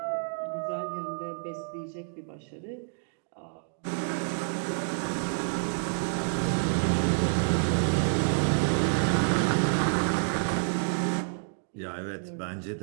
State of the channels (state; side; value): silent; left; digital silence